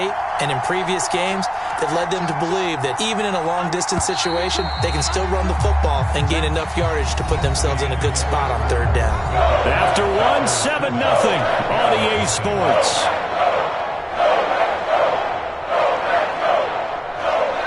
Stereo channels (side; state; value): both; identical; correlation 1.00